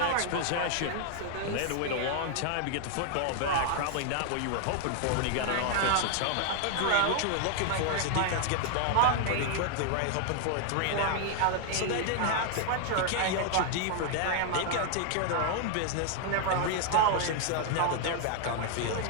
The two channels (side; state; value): both; different; correlation 0.00